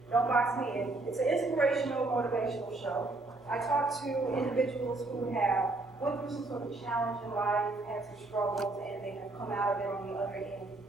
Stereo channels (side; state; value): left; quieter; 3.1 dB